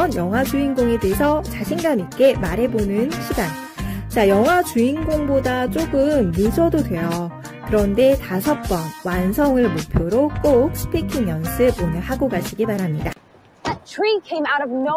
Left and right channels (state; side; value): identical; both; correlation 1.00